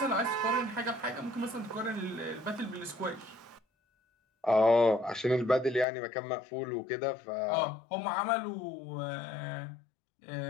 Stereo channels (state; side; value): drops out; right; at 5.9 s